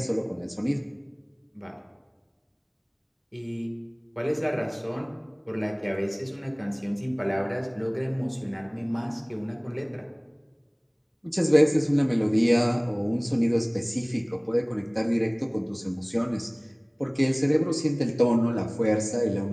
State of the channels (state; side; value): identical; both; correlation 1.00